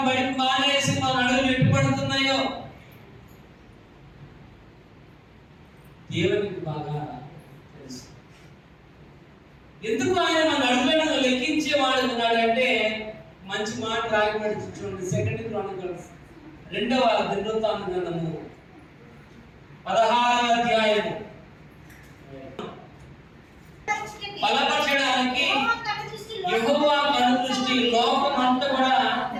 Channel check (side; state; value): both; identical; correlation 1.00